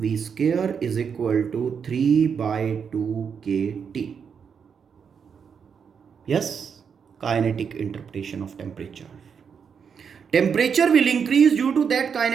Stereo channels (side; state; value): left; quieter; 6.7 dB